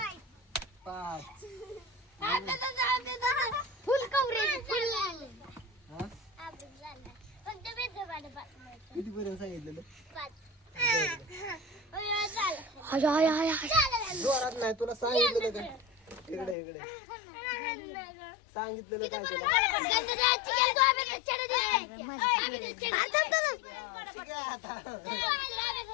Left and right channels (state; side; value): drops out; right; at 16.6 s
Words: 5 फुल कवरेज फुल हा किती पर्यंत सांगितलेलं जोरात नाही तुला सांगितलेलं काय इकडे इकडे सांगितलेलं काय तुला